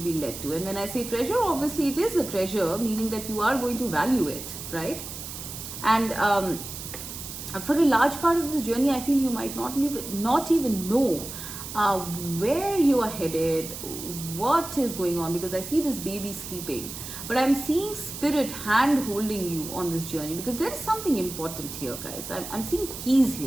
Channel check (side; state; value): right; noise; hiss, 9 dB below the sound